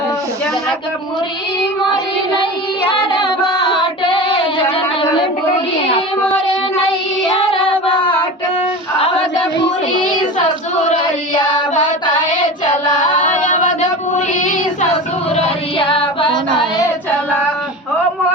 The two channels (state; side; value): normal; both; correlation 0.31